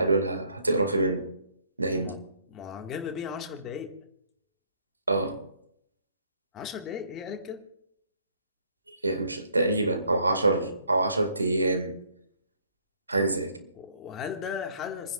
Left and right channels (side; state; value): both; inverted; correlation -0.63